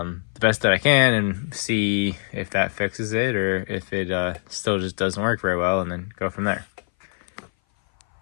best that I can, and see if that fixes it, or if it still just doesn't work very well, and then go from there.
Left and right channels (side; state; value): right; silent; 58 dB below the other